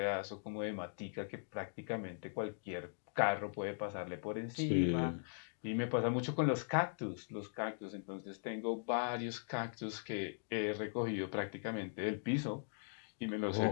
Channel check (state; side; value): silent; right; digital silence